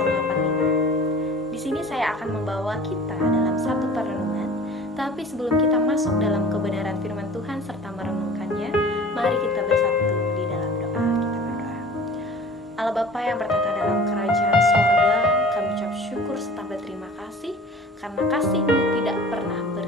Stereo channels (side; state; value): both; normal; correlation 0.43